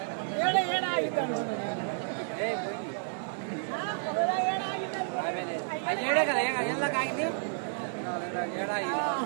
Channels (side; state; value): left; silent; digital silence